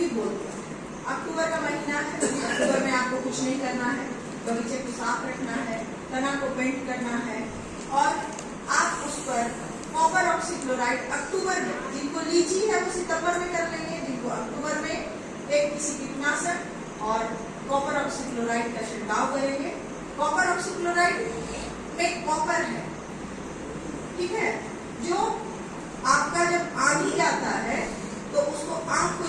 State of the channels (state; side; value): identical; both; correlation 1.00